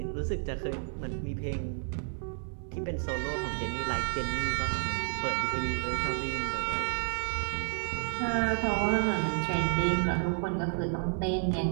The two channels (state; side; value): silent; left; 57 dB below the other